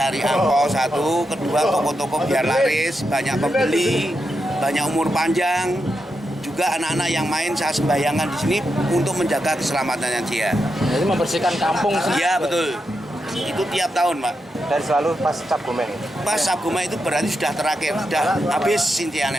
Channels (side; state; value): both; normal; correlation 0.86